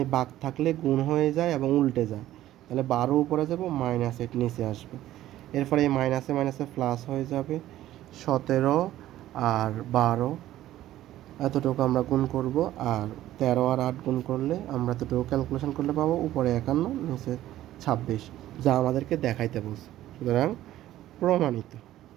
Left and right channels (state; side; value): quieter; left; 13.9 dB